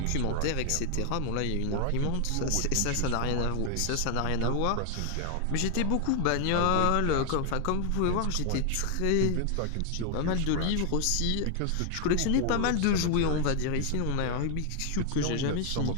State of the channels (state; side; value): different; both; correlation 0.00